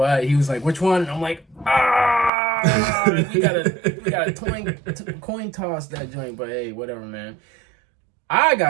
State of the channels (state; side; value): drops out; left; at 2.3 s